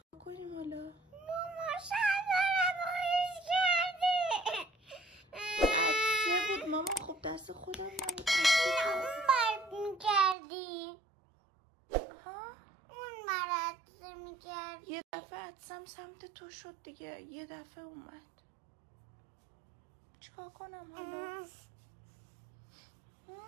کنیم حالا؟ ماما شلوارم خیس کردی. عدسه بود ماما. خب دست خودم نبود. اون مرد میکردی. ها؟ اون مرد میکردی. یه دفعه عدسم سمت تو شد دیگه. یه دفعه اومد. چیکار کنم حالا؟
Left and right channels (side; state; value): left; drops out; at 10.4 s